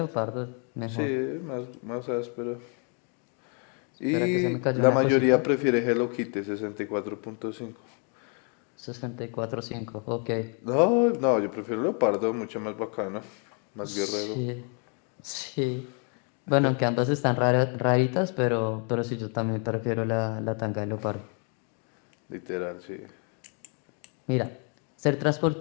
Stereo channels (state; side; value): quieter; right; 39.2 dB